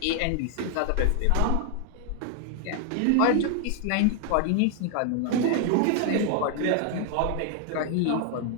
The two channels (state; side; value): different; both; correlation 0.00